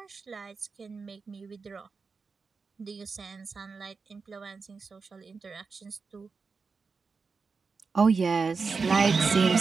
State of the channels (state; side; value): quieter; left; 4.8 dB